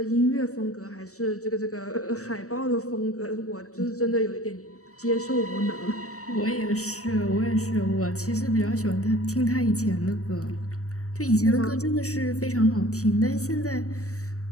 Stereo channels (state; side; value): late; right; 0.65 ms